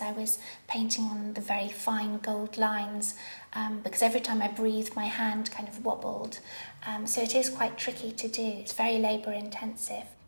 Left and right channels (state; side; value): inverted; both; correlation -1.00